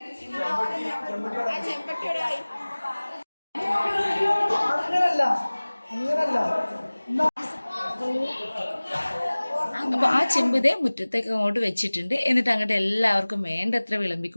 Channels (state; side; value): inverted; both; correlation -1.00